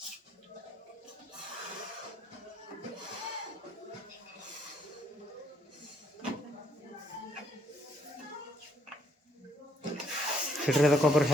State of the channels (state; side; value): normal; both; correlation 0.69